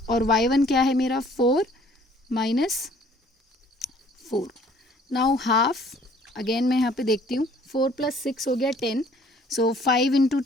और y1 क्या है मेरा 4 -4। नाउ हाफ अगेन मैं यहाँ पे देखती हूँ, 4 + 6 हो गया 10, सो 5 ×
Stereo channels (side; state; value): both; normal; correlation 0.57